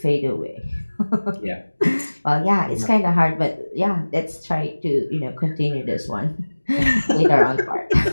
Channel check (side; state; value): both; inverted; correlation -1.00